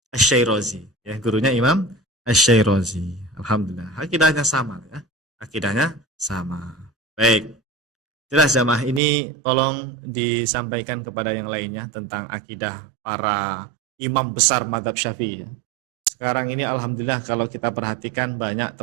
Asy-Syairazi, ya, gurunya Imam Asy-Syairazi. Alhamdulillah, akidahnya sama ya. Akidahnya sama. Baik. Jelas jamaah, ini tolong disampaikan kepada yang lainnya tentang akidah para imam besar mazhab Syafi'i ya. Sekarang ini alhamdulillah kalau kita perhatikan banyak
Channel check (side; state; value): left; drops out; at 9.0 s